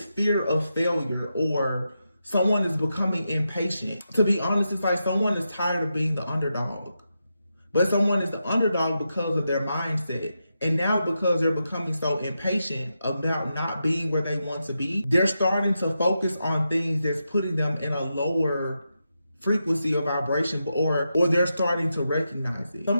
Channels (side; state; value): both; inverted; correlation -0.87